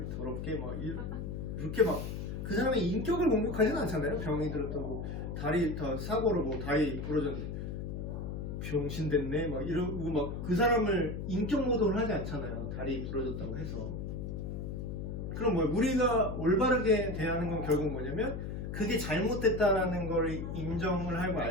더럽게 막 이렇게 막 그 사람의 인격을 공격하지는 않잖아요. 병이 들었다고 다리 다 사고로 뭐 다리 부러졌는데 병신 됐네 막 이러고 막 그 사람을 인격 모독을 하지 않잖아요. 다리 부러졌다고 해서. 그럼 뭐 우리가 올바르게 대하는 건 결국 뭐냐면, 그게 잘못됐다라는 걸 인정을 하고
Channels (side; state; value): left; noise; hum, 5 dB below the sound